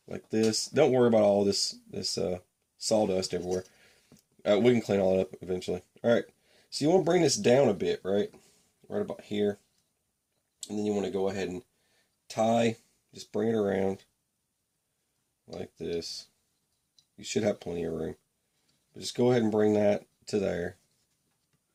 like this. Don't worry about all this sawdust everywhere. We can clean all that up eventually. All right. So you want to bring this down a bit, right about here, and then you want to go ahead and tie, just bring it around like this. You should have plenty of room, but just go ahead and bring that to there,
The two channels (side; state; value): both; identical; correlation 1.00